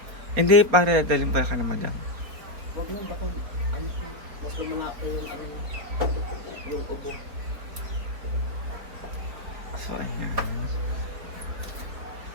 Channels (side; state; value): left; late; 4.5 ms